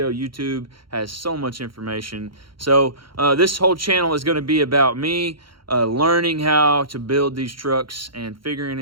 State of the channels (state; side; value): late; left; 0.73 ms